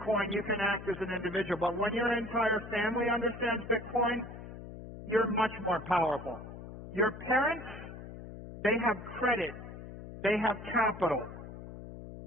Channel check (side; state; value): left; noise; hum, 12 dB below the sound